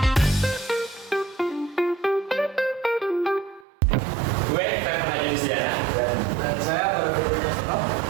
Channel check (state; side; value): drops out; left; at 3.7 s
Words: Gue Stefan Ajunisya Dan saya baru berbicara.